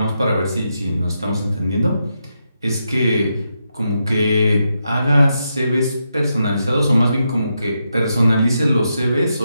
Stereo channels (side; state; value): both; inverted; correlation -0.84